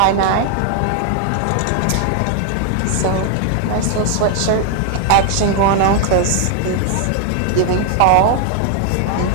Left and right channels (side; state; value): both; different; correlation 0.00